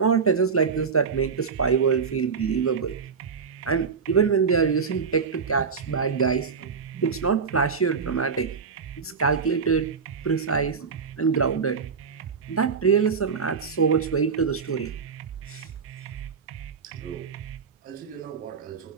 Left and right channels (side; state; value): left; quieter; 5.7 dB